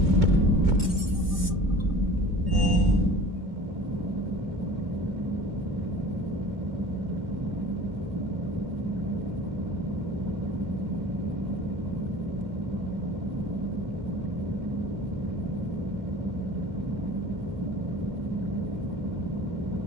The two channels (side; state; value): left; late; 2.2 ms